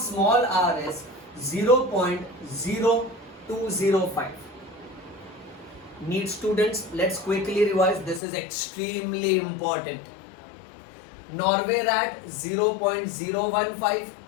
small r is 0.0205. Need students, let's quickly revise. This is extremely important. Norway rat 0.015,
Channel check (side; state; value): right; drops out; at 8.2 s